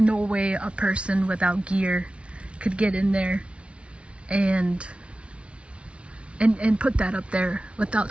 way a person without gear could get in there and put that up there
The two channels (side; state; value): left; late; 0.060 ms